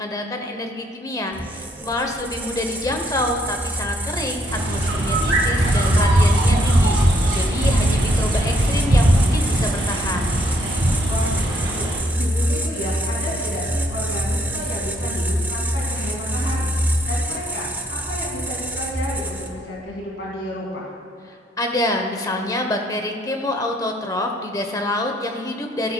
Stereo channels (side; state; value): both; normal; correlation 0.69